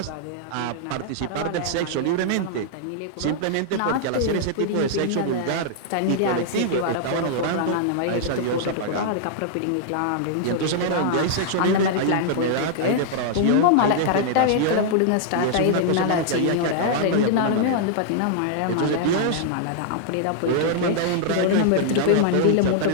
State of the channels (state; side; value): different; both; correlation -0.01